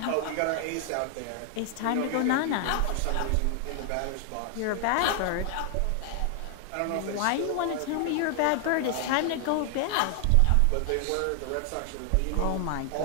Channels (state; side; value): different; both; correlation 0.00